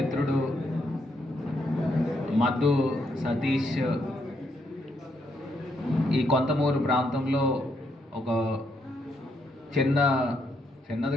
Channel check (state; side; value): normal; both; correlation 0.76